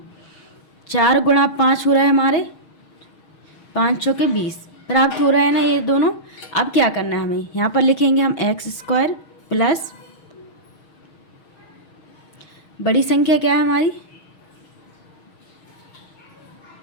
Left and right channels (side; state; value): right; late; 6.3 ms